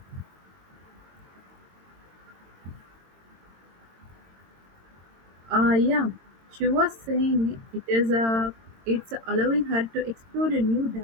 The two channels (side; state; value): left; late; 22 ms